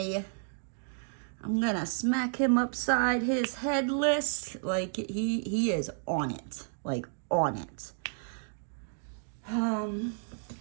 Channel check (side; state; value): left; silent; digital silence